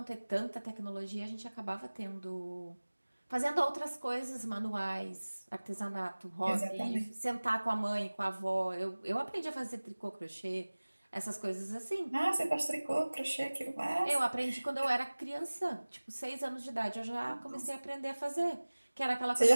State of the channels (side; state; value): both; inverted; correlation -1.00